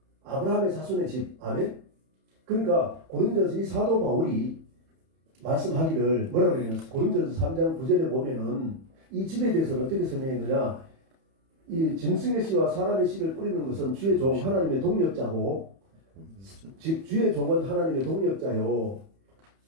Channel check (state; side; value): late; left; 31 ms